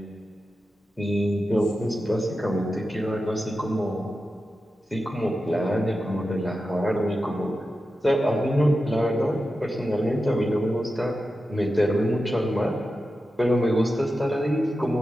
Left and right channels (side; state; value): both; normal; correlation 0.91